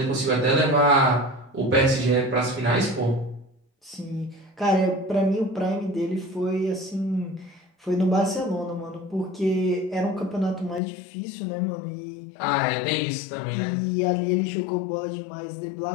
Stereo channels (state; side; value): drops out; right; at 10.8 s